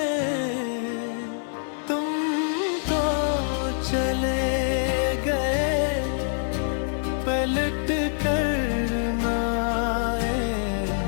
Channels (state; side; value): silent; right; 62 dB below the other